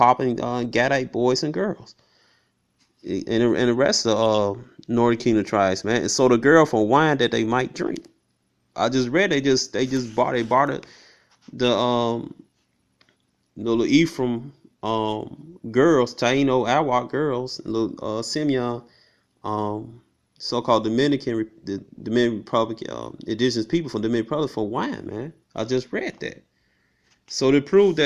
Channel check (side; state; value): both; identical; correlation 1.00